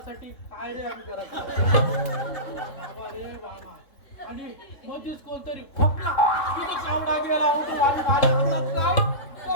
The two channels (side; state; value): right; late; 3.3 ms